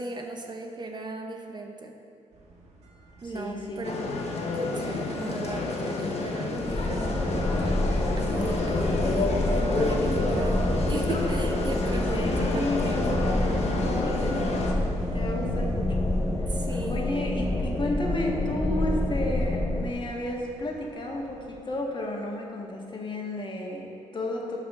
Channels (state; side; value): normal; both; correlation 0.76